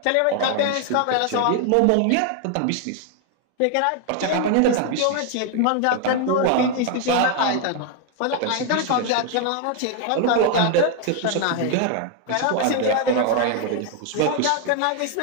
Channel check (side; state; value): both; different; correlation 0.00